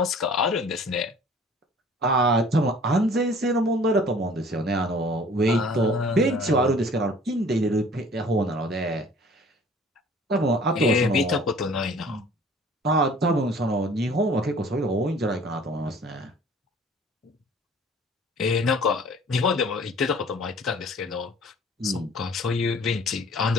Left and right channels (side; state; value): both; normal; correlation 0.50